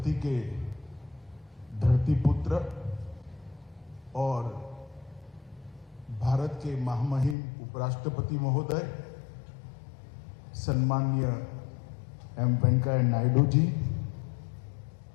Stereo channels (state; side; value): drops out; right; at 7.4 s